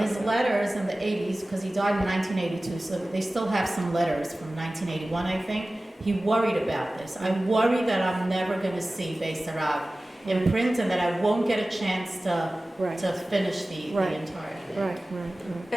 his happening. letters in the 80s, because he died in 1982, so they still have some letters from 1981, I think. He worried about this. I worry that I'm never going to see Beis Harav in print, and that I won't get a chance to Right. finish the Right. entire thing. Right.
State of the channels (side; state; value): both; normal; correlation 0.97